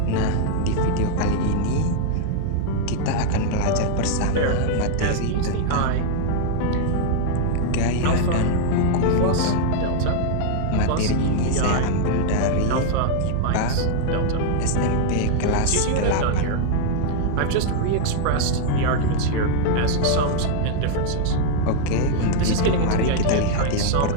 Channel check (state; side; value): different; both; correlation 0.00